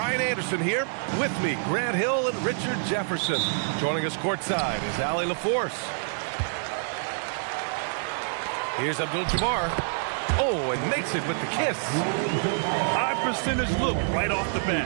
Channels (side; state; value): left; silent; 60 dB below the other